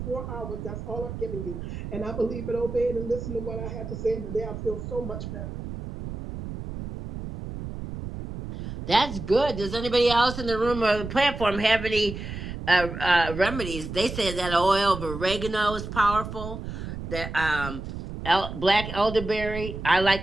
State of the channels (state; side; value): noise; right; rumble, 8 dB below the sound